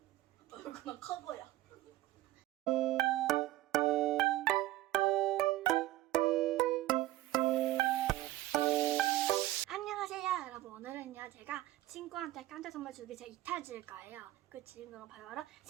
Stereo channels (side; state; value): left; quieter; 16.0 dB